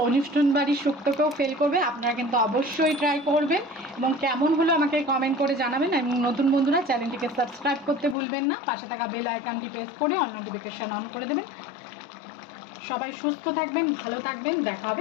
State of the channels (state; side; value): drops out; right; at 8.2 s